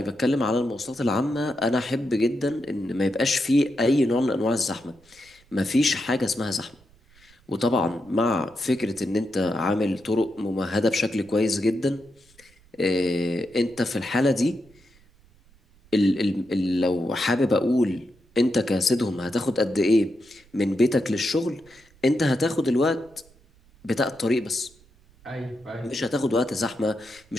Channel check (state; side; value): noise; right; rumble, 30 dB below the sound